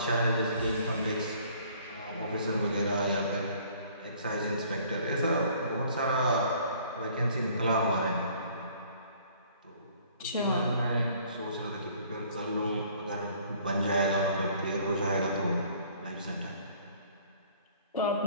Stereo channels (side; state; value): both; inverted; correlation -0.56